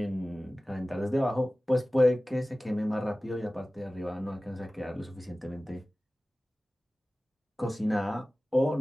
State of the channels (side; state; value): both; normal; correlation 0.97